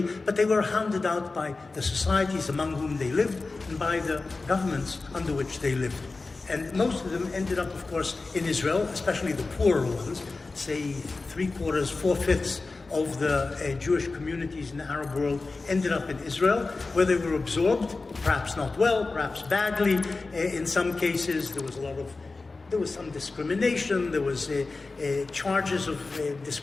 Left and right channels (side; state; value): right; quieter; 3.7 dB